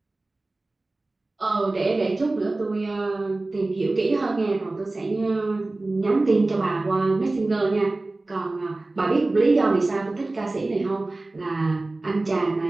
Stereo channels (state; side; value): quieter; left; 3.0 dB